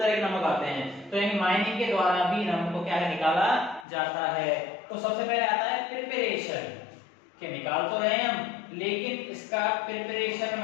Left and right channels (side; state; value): right; drops out; at 3.9 s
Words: के नमक आते हैं। तो यानी माइनिंग के द्वारा भी नमक को क्या है, निकाला जाता है। तो सबसे पहले आता है प्रिपरेशन, के निकाल तो रहे हैं हम, लेकिन इसका प्रिपरेशन